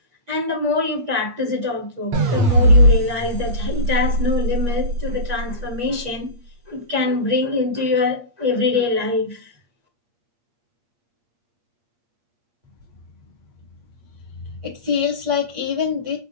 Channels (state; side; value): late; left; 8.5 ms